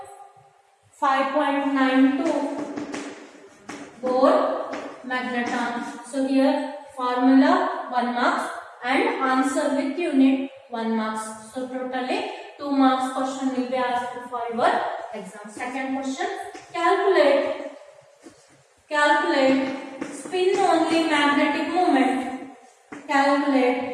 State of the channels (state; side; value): identical; both; correlation 1.00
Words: 5.92 Bohr magneton. So here formula 1 marks and answer with unit 1 marks. So totally 2 marks question will be asked for your exam. Second question, calculate spin only magnetic moment.